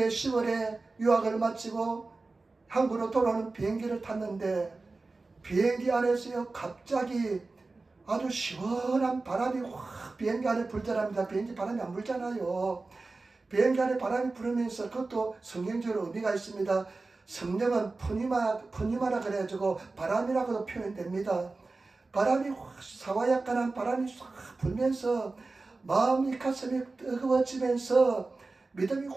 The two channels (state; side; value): quieter; left; 3.6 dB